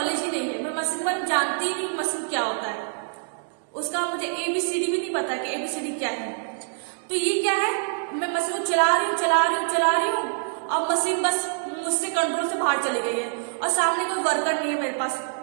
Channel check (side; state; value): left; silent; digital silence